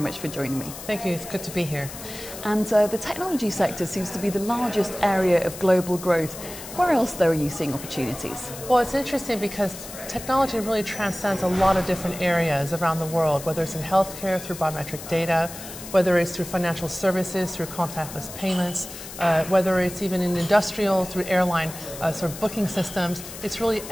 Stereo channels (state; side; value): noise; left; hiss, 12 dB below the sound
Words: for joining me. Thank you, it's good to be here. And the technology sector seems to be the largest area of global growth. Where else, though, are you seeing opportunities? Well, it's interesting because technology really transcends a lot of different areas around the world, whether it's in healthcare through biometric data, whether it's through financial services, through contactless payments, whether it's even in industrial, through airline sort of booking systems. It's really